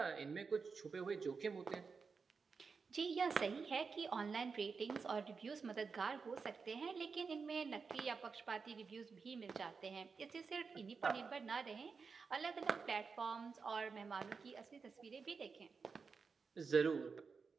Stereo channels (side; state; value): left; quieter; 5.1 dB